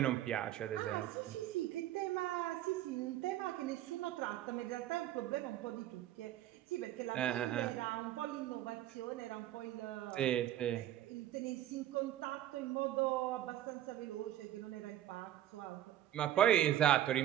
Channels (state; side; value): quieter; left; 12.5 dB